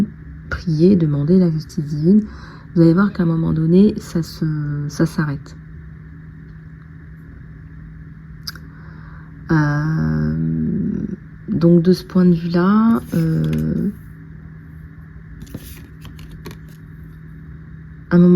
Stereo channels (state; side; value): identical; both; correlation 1.00